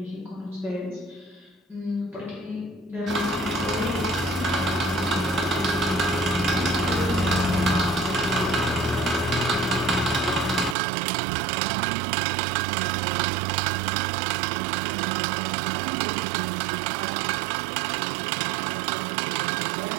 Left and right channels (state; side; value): drops out; left; at 10.8 s